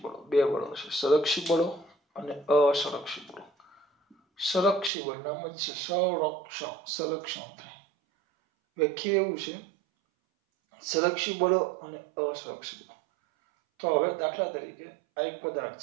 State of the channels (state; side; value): drops out; left; at 4.9 s